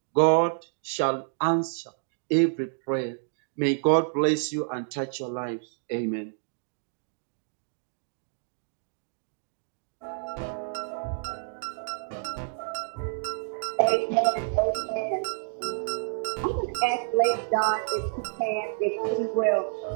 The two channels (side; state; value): left; silent; digital silence